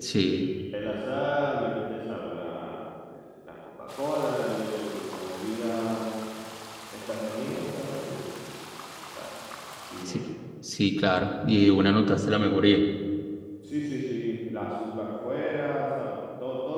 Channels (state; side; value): identical; both; correlation 1.00